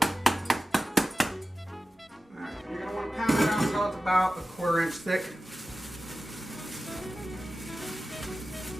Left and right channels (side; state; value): both; normal; correlation 0.93